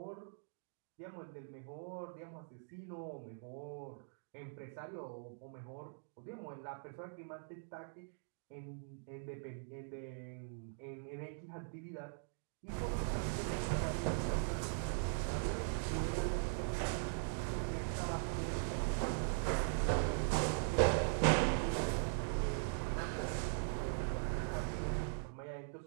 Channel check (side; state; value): left; silent; digital silence